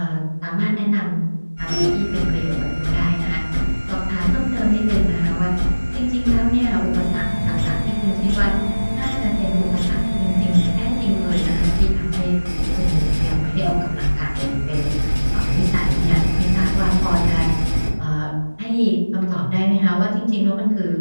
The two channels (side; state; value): both; inverted; correlation -1.00